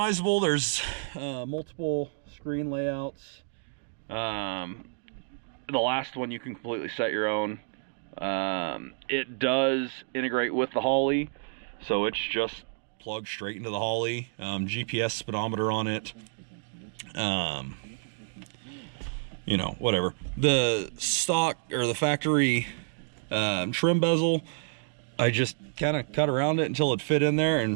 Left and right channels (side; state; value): left; silent; digital silence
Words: There's multiple screen layouts. The last one you can completely set your own. It does integrate with the Holly, so it's just plugged straight into the Holly. GPS speedometer on it. You know, whatever. The stock or the factory trim bezel, I just kind of cut around it until it fit in there, and